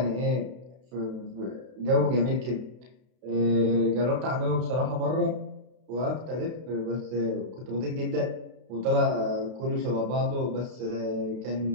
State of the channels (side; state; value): left; late; 32 ms